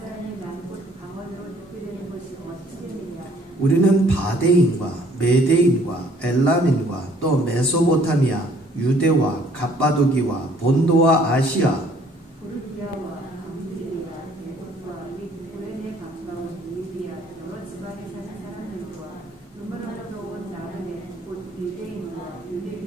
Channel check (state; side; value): normal; both; correlation 0.60